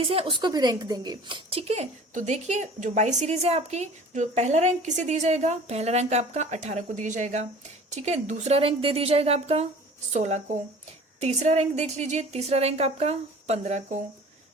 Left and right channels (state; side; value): normal; both; correlation 0.45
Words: है उसको भी रैंक देंगे, ठीक है। तो देखिए जो वाई सीरीज है आपकी, जो पहला रैंक किसे दिया जाएगा, पहला रैंक आपका 18 को दिया जाएगा, ठीक है। दूसरा रैंक दे दिया जाएगा आपका 16 को। तीसरा रैंक देख लीजिए, तीसरा रैंक आपका 15 को।